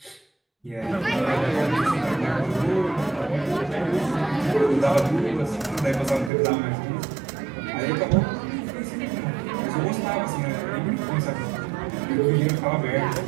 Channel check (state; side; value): drops out; left; at 6.3 s